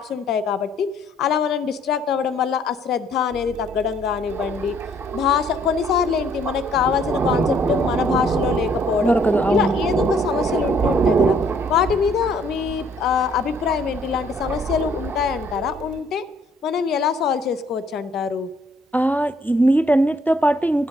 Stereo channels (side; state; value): both; normal; correlation 0.64